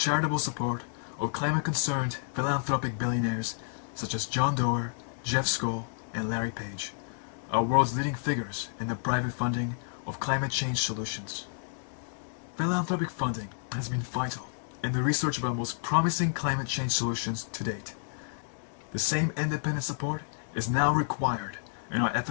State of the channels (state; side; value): silent; right; digital silence